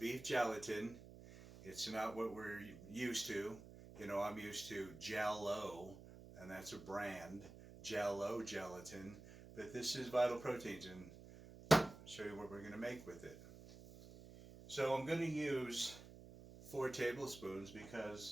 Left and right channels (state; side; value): noise; right; hum, 16 dB below the sound